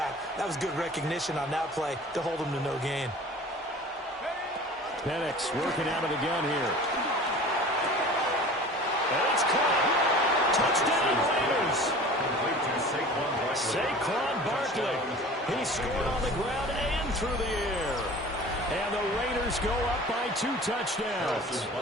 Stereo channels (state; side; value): normal; both; correlation 0.41